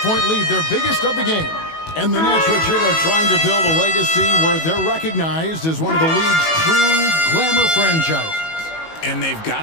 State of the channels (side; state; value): right; late; 19 ms